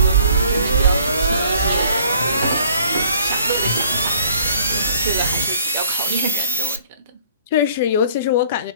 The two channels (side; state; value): both; inverted; correlation -0.57